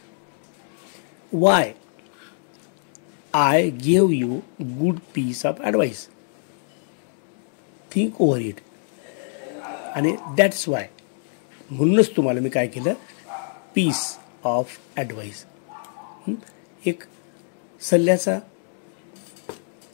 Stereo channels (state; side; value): silent; right; digital silence